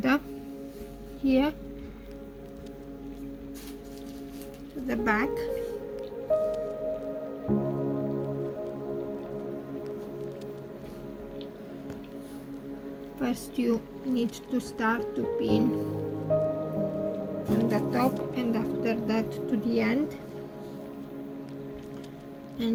here to the back. First you need to start to pin on the top and after that to the end,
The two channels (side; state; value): both; identical; correlation 1.00